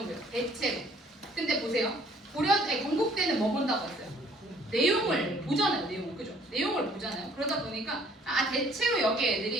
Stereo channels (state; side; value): normal; both; correlation 0.59